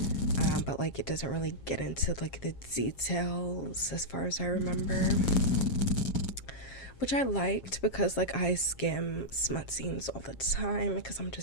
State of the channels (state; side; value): late; right; 7.4 ms